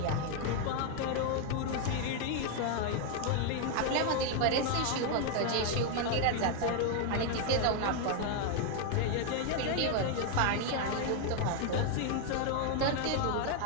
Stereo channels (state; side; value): different; both; correlation 0.00